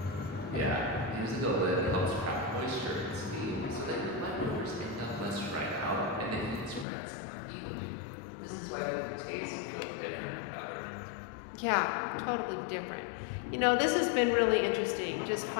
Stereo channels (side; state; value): right; drops out; at 6.9 s